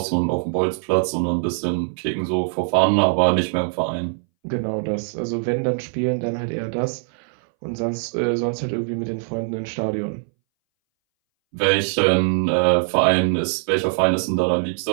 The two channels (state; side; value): silent; left; 62 dB below the other